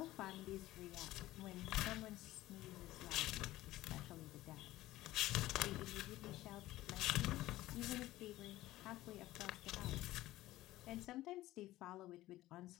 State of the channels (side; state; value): right; quieter; 16.3 dB